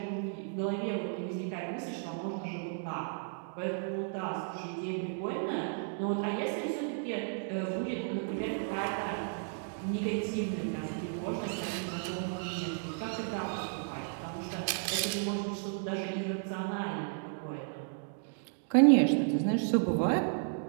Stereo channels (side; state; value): left; silent; digital silence